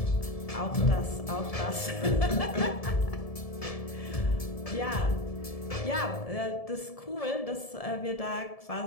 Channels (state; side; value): late; right; 1.7 ms